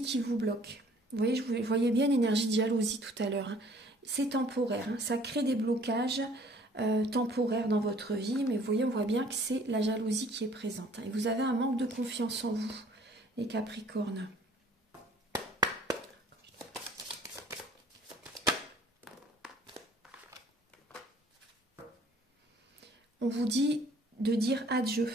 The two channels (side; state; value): both; normal; correlation 0.56